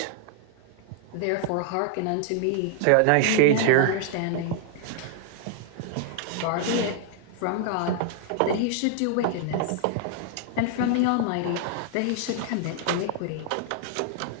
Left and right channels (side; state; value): both; different; correlation 0.00